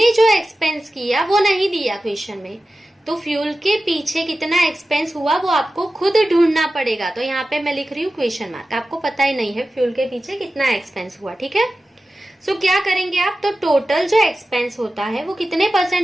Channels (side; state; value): both; normal; correlation 0.94